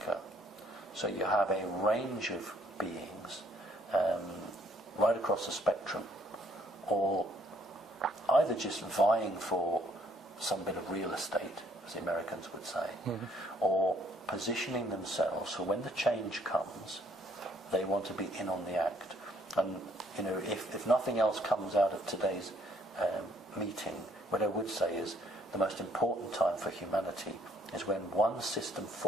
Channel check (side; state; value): both; normal; correlation 0.65